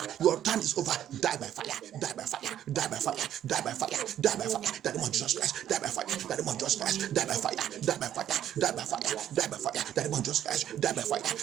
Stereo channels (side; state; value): left; quieter; 10.9 dB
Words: Die by fire. That demon Jesus Christ, die by fire. That demon Jesus Christ, die by fire. That demon Jesus Christ, die by